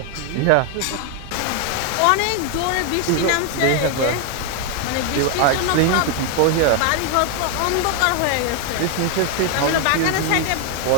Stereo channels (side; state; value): both; different; correlation 0.00